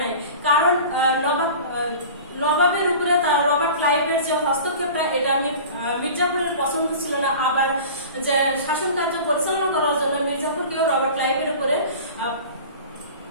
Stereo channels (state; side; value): inverted; both; correlation -0.38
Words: নাই, কারণ নবাবের উপরে রবার্ট ক্লাইভের যে হস্তক্ষেপটা এটা মীর জাফরের পছন্দ ছিল না। আবার যে শাসন কার্য পরিচালনা করার জন্য মীর জাফরকেও রবার্ট ক্লাইভের উপরে